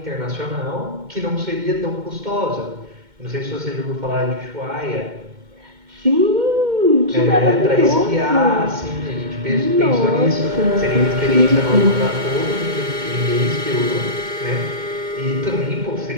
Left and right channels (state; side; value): late; left; 2.1 ms